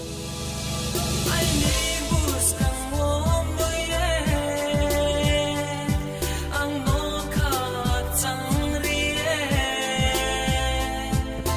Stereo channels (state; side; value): identical; both; correlation 1.00